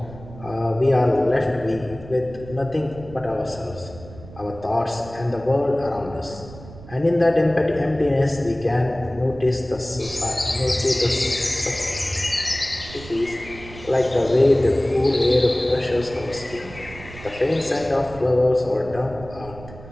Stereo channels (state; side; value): noise; right; rumble, 17 dB below the sound